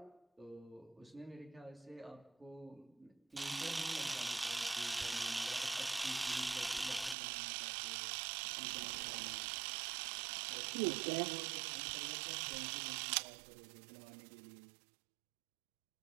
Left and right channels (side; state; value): left; drops out; at 7.2 s